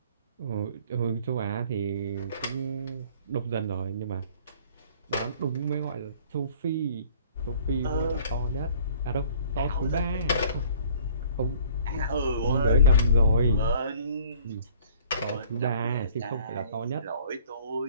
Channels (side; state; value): both; inverted; correlation -0.52